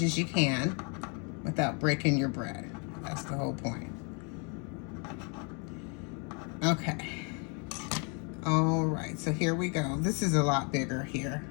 as you can without breaking your bread. That's the whole point. Okay. All right, so here we go. This is a lot bigger here.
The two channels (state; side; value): quieter; right; 35.2 dB